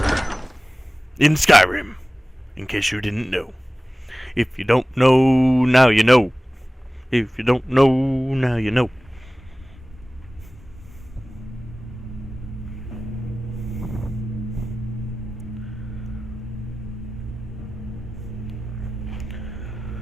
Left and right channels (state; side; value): normal; both; correlation 0.97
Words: in Skyrim, in case you didn't know. If you don't know, now you know. If you don't know, now you know.